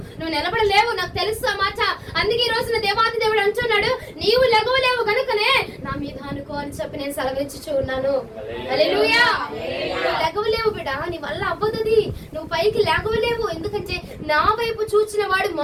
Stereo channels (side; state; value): both; identical; correlation 1.00